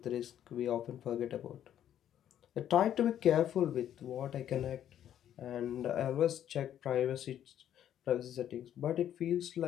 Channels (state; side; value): quieter; right; 10.6 dB